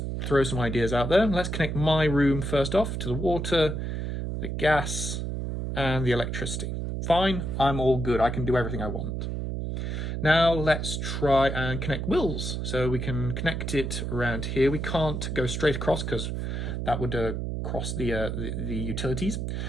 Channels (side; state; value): right; noise; hum, 3 dB below the sound